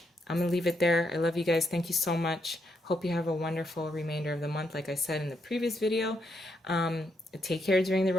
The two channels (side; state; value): both; normal; correlation 0.78